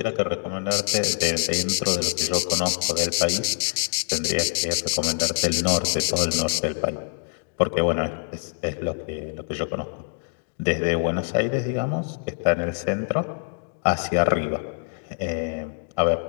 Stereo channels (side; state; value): right; silent; digital silence